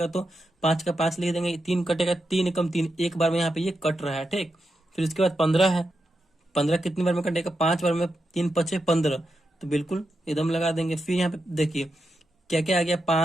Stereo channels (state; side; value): normal; both; correlation 0.86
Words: तो 5 का 5 लिख देंगे। 3 कटेगा, 3 कम 3, एक बार में यहाँ पे ये कट रहा है, ठीक। फिर उसके बाद 15 है। 15 कितनी बार में कटेगा, 5 बार में। 3 5 15, तो बिल्कुल एकदम लगा देंगे। फिर यहाँ पे देखिए क्या क्या आ गया,